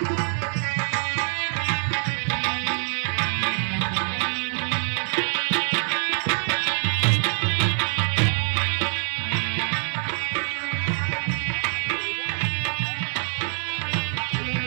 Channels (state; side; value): silent; left; digital silence